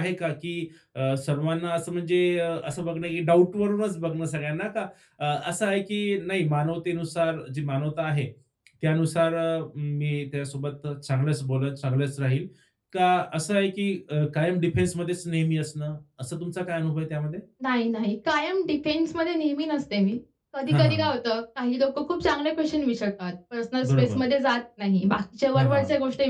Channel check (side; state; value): both; identical; correlation 1.00